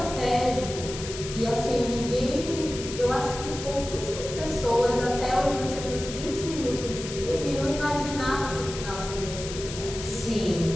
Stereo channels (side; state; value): left; noise; hiss, 10 dB below the sound